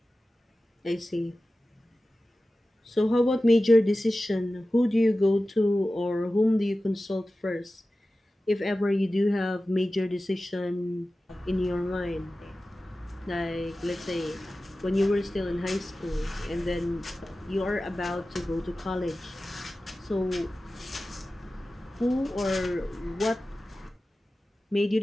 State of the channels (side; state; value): both; normal; correlation 0.95